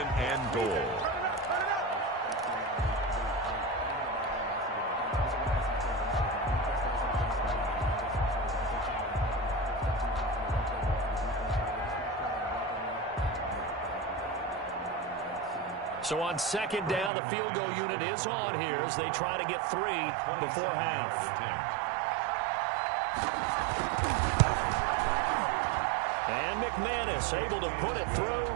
and goal. So on second down, the field goal unit is on here as they try to get 3 before half. And McManus able to put it through.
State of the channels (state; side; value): drops out; left; at 17.1 s